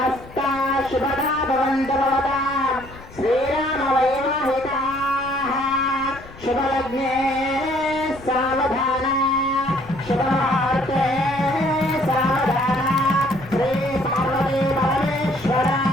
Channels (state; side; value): noise; left; rumble, 18 dB below the sound